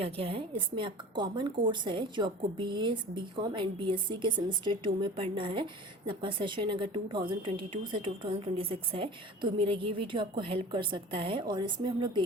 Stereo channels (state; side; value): normal; both; correlation 0.39